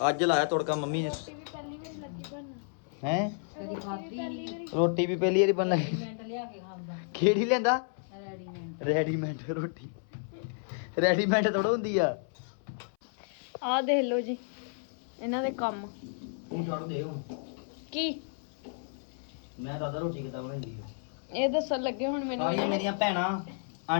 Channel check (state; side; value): silent; right; 57 dB below the other